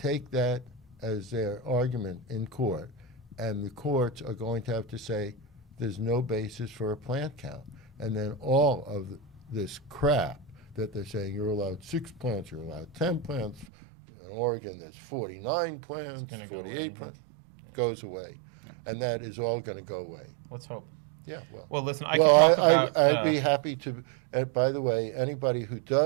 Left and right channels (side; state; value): left; drops out; at 13.7 s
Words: that as their argument in court, and the courts are going to have to say there's no basis for a plant count. And then all of this crap that they're saying, you're allowed 6 plants, you're allowed 10 plants. In Oregon, there's 49 plants, gonna go 48 away. plants. Goes away. And that is all going to go away. Let's hope. Yeah, well. Well, listen, I Well, can talk about. I'd be happy to. By the way, anybody who